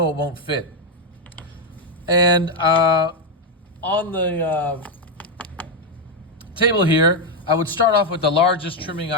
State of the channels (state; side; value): normal; both; correlation 0.04